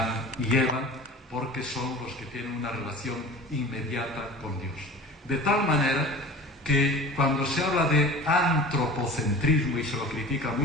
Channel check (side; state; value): both; normal; correlation 0.38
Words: y Eva, porque son los que tienen una relación inmediata con Dios. De tal manera que cuando se habla de antropocentrismo y se lo critica